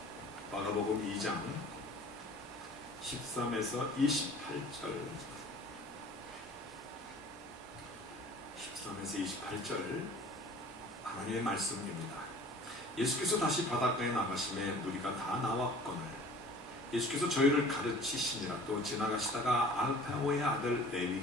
마가복음 2장 13에서 28절 13에서 28절 하나님의 말씀입니다. 예수께서 다시 바닷가에 나가심에 무리가 다 나왔거늘 예수께서 저희를 가르치시니라. 또 지나가시다가 알파오의 아들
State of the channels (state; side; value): normal; both; correlation 0.47